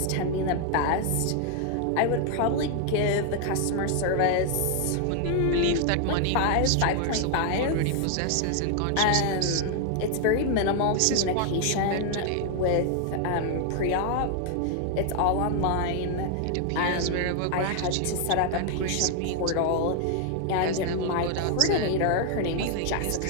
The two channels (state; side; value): different; both; correlation 0.00